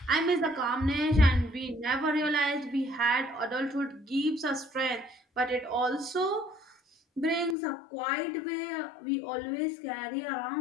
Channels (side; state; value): right; drops out; at 7.6 s